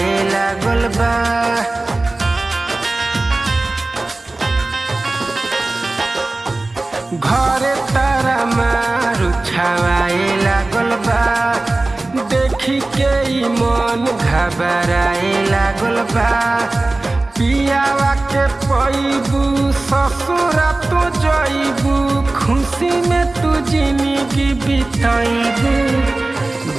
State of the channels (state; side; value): quieter; left; 3.0 dB